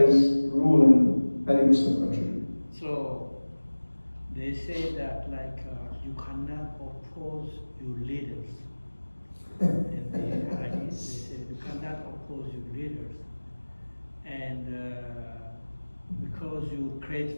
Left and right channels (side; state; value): both; inverted; correlation -1.00